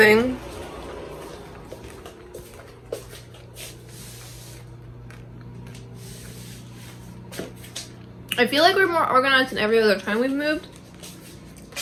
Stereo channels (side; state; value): both; identical; correlation 1.00